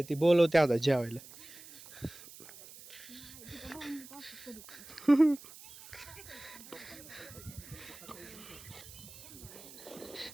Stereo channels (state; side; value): noise; right; hiss, 17 dB below the sound